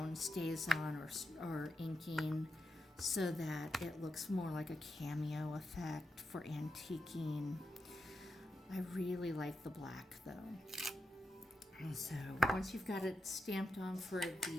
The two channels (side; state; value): both; normal; correlation 0.87